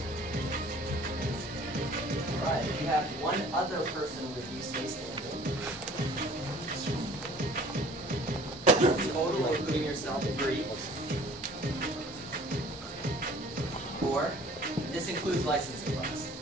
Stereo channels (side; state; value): both; normal; correlation 0.50